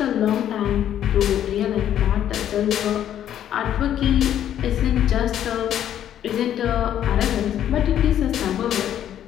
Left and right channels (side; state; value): right; quieter; 10.7 dB